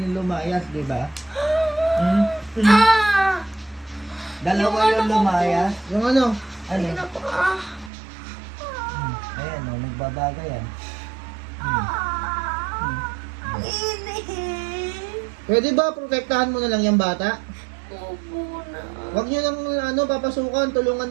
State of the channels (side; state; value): left; drops out; at 7.9 s